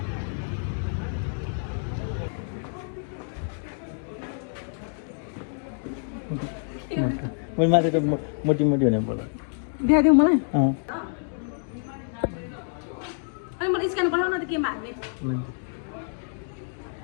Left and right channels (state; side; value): silent; right; 60 dB below the other